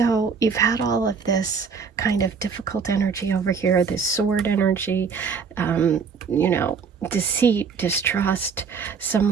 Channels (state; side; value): quieter; left; 5.7 dB